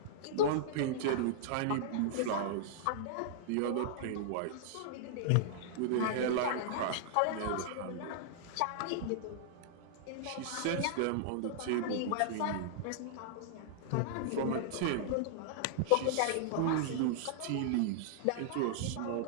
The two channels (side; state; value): both; different; correlation -0.01